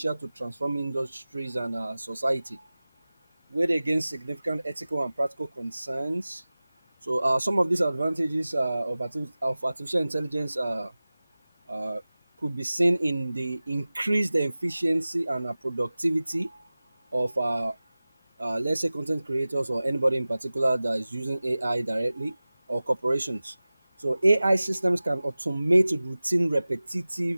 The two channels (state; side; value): inverted; both; correlation -0.98